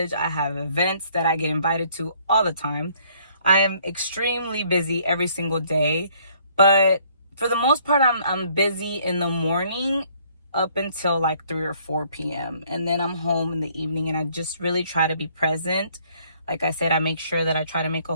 I have events that I get invited to all the time. I am extremely busy every single day, but for the most part I'm busy in the morning up until like 3 or 4 p.m. and then I'm home in the evening, and I just really try to be present. Like I said, I make sure that I try to make a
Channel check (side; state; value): both; inverted; correlation -0.62